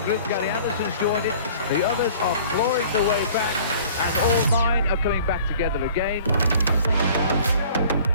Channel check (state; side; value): inverted; both; correlation -0.50